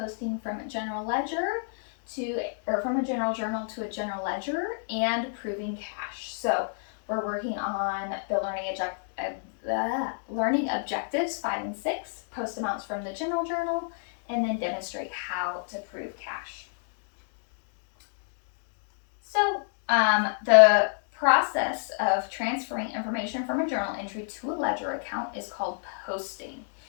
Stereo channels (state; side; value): silent; right; digital silence